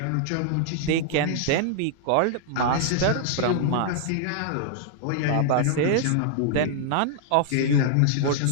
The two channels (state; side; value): different; both; correlation -0.01